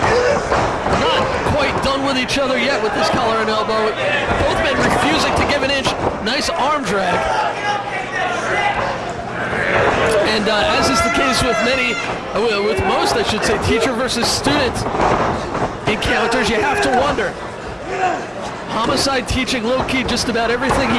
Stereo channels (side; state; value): both; identical; correlation 1.00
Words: not quite done with each other yet with this collar and elbow. Both men refusing to give an inch. Nice arm drag. And as is the case with with most, I should say, teacher versus student encounters, you have to wonder. Homicide teaching Low-key just about everything